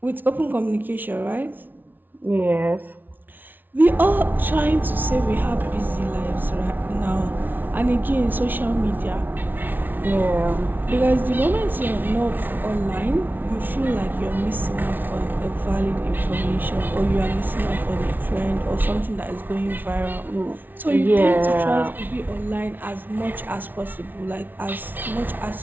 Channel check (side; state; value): left; late; 0.088 ms